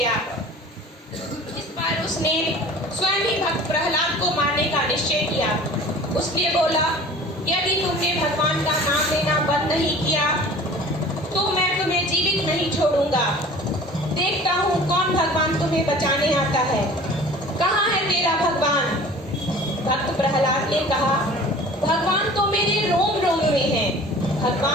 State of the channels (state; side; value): normal; both; correlation 0.44